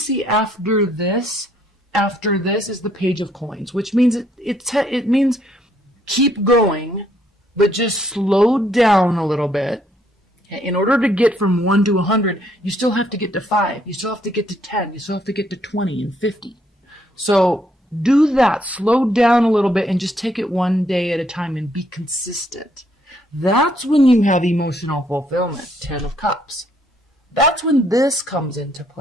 after this? After this is the Page of Coins, which means it means keep going, but just slowed down a little bit. In order to get from 1 to 100, you still have to get to 5. You still have to get to 10. You still have to get to 20 and 50. So do that. Slow down a little bit and just take it one day at a time and be consistent. That's when you have emotional fulfillment. 10 of Cups. That's when this comes into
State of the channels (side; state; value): both; normal; correlation 0.69